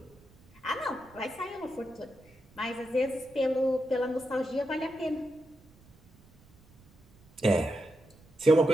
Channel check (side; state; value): right; noise; rumble, 27 dB below the sound